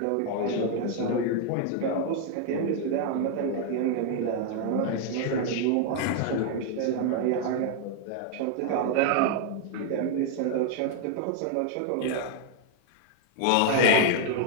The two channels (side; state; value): both; different; correlation 0.00